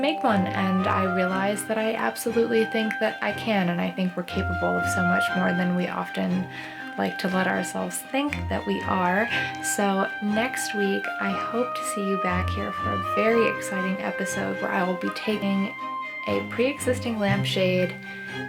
one. And I realized that I absolutely think that I can, and I think we're capable of so much more than we often like to let ourselves think that we are. So next week, I hope to see you back here for a very exciting episode where I will be taking a pre-existing lampshade,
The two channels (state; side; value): identical; both; correlation 1.00